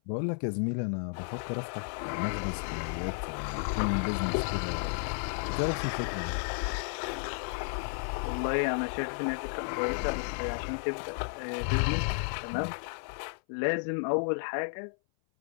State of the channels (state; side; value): silent; right; 56 dB below the other